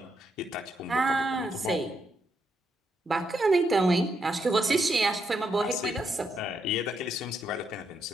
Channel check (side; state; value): both; normal; correlation 0.79